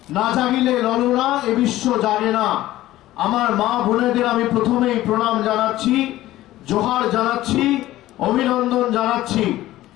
না জাগিলে ললনা এ বিশ্ব জাগে না। আমার মা বোনেদের আমি প্রথমেই প্রণাম জানাচ্ছি, জোহার জানাচ্ছি, অভিনন্দন জানাচ্ছি।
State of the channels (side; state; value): right; quieter; 15.5 dB